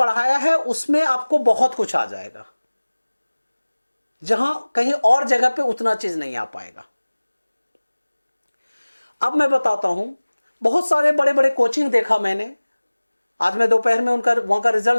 है उसमें आपको बहुत कुछ आ जाएगा, जहां कहीं और जगह पे उतना चीज नहीं आ पाएगा। अब मैं बताता हूं, बहुत सारे बड़े बड़े कोचिंग देखा मैंने। आज मैं दोपहर में वहां का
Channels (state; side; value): inverted; both; correlation -1.00